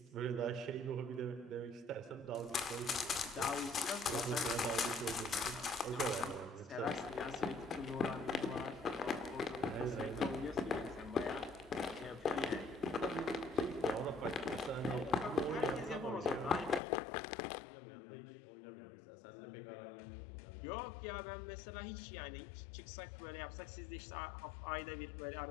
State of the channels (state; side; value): drops out; right; at 16.8 s